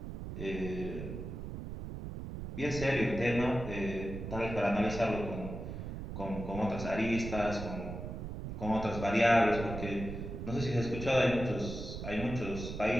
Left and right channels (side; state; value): right; noise; rumble, 7 dB below the sound